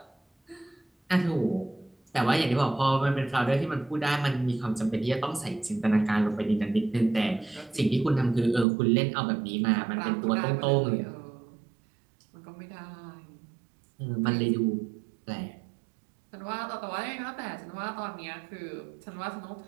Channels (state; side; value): drops out; left; at 8.7 s